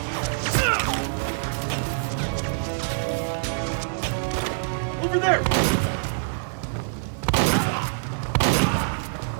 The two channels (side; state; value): left; silent; 59 dB below the other